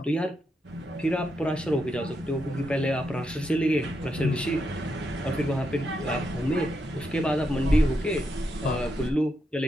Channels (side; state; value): both; normal; correlation 0.82